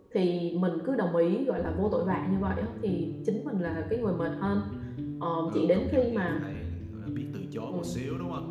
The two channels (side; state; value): both; identical; correlation 1.00